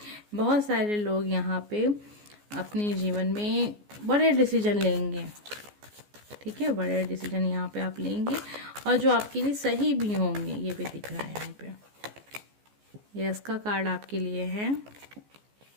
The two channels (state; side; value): late; left; 14 ms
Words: बहुत सारे लोग यहाँ पे अपने जीवन में बड़े डिसीजन लेंगे। ठीक है, बड़े डिसीजन यहाँ पे आप लेंगे और जो आपके लिए सही भी होंगे, ये भी दिख रहा है यहाँ पे। यस का कार्ड आपके लिए है।